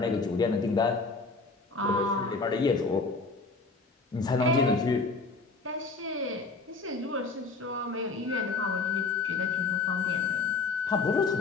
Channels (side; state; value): right; quieter; 4.0 dB